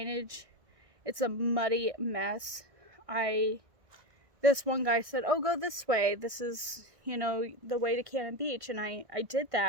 It's a muddy mess. This one guy said, oh, go this way. This is, the way to Cannon Beach. And I did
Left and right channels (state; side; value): late; left; 1.6 ms